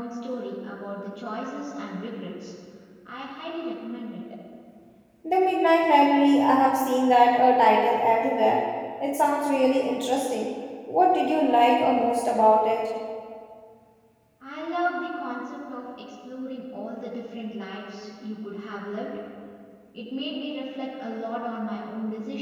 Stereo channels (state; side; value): identical; both; correlation 1.00